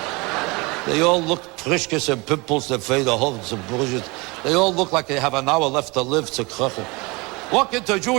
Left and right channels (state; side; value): quieter; left; 26.0 dB